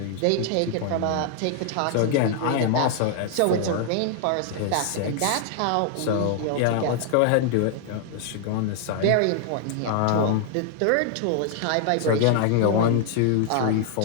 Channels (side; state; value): both; different; correlation 0.00